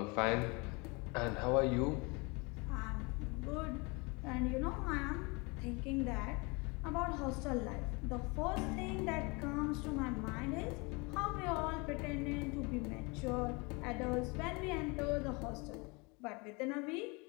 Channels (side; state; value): right; quieter; 28.5 dB